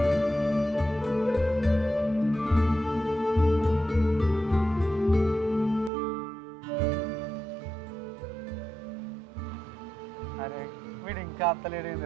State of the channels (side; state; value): left; drops out; at 5.9 s